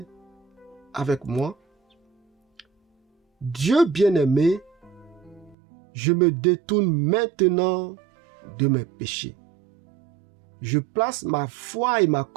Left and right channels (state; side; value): drops out; left; at 5.6 s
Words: avec moi. Dieu bien-aimé, je me détourne maintenant de mes péchés. Je place ma foi et ma